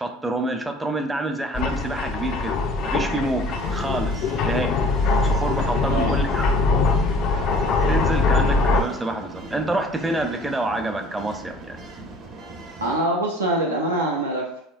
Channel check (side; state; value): both; normal; correlation 0.49